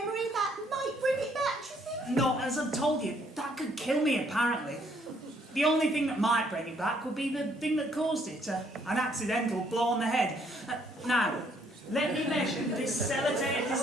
that might bring it back, do you think? No, as I've told you, that could kill me, apparently. The only thing that might bring it back would be the thing that caused it, an accidental blow on the head. Now, let me measure this sellotape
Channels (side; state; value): both; normal; correlation 0.67